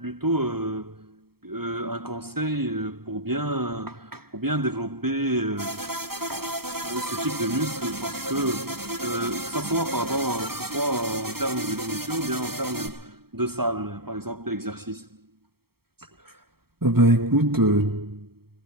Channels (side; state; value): left; late; 0.95 ms